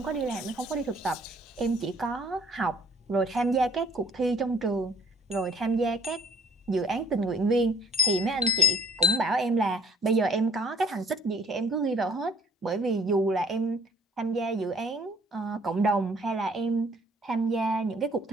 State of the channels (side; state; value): both; normal; correlation 0.56